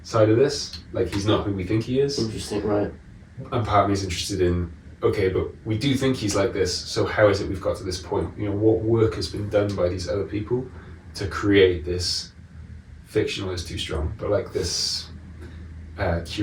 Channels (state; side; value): identical; both; correlation 1.00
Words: side of this. Like, he's not who we think he is. Interesting, right. And part of me is interested in, okay, but we do think he's like this, so how is it we've got to this point? What work has been done by these other people to create this, fictional is too strong, but like this